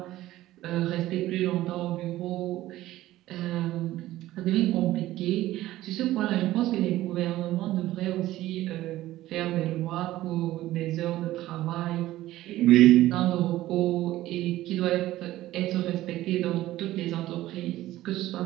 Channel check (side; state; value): left; quieter; 15.4 dB